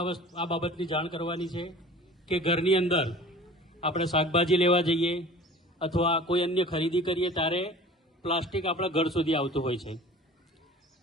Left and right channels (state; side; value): normal; both; correlation 0.43